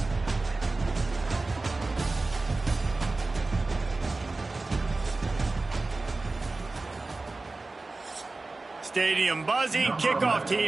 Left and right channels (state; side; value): quieter; left; 3.4 dB